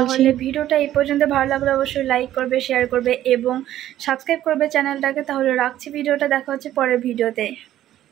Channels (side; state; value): left; quieter; 12.8 dB